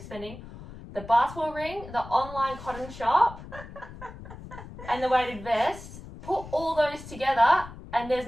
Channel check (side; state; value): left; noise; rumble, 14 dB below the sound